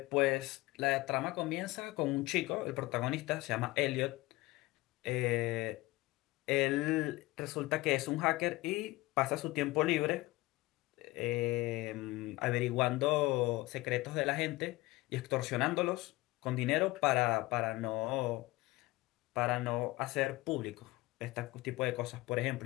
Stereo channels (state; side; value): quieter; right; 20.2 dB